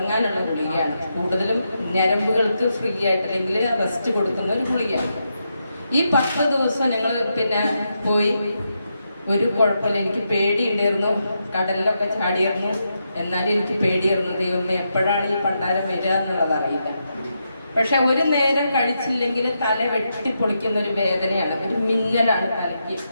ഗുളികയാണ്. കൂടുതലും ഞരമ്പുകൾക്ക് ഫ്രീ ആയിട്ട് അല്ലെങ്കിൽ റെസ്റ്റ് കൊടുക്കുന്ന ഒരു ഗുളികയാണ്. ഈ 10 ദിവസം ഞങ്ങൾ പിന്നെ പോയി. ഒരു കുഴപ്പമില്ല. എനിക്ക് പേടിയുണ്ടായിരുന്നു. കടലിലൊക്കെ ചാടിയിരുന്നു. എന്നാലും എനിക്ക് പേടിയായിരുന്നു. ദൈവമേ, എപ്പോഴാണ് ഈ പണ്ടാരം വരിക എന്നുള്ളത് അറിയില്ല. പക്ഷെ ഒരു നേരം കഴിച്ചില്ലെങ്കിൽ തല വെട്ടിപ്പൊളിക്കുന്ന ഒരു വേദനയാണ്, ഒരു മിന്നലാണ് തലയ്ക്ക്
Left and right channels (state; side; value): inverted; both; correlation -0.84